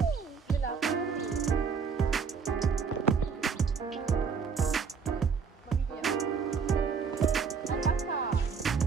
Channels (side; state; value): left; quieter; 5.8 dB